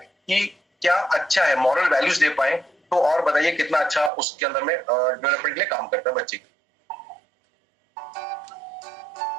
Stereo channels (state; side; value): drops out; left; at 4.1 s